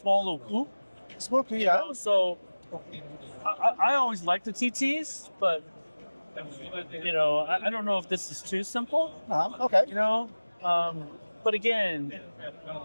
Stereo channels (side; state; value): both; inverted; correlation -1.00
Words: little coupe. Small coupe, yeah. So I always liked the TTs, but I don't know if this is too simple. Okay. But again,